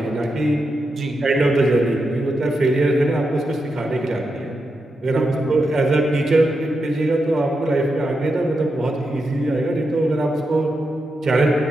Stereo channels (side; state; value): both; normal; correlation 0.86